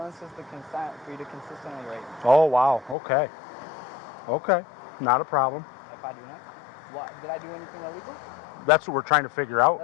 is the consent for you to consistently rape. Oh, wow. Okay. Okay. Not a problem. If I do not, what? Did I do anything illegal? That's what we're trying to figure out.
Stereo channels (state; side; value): drops out; right; at 3.0 s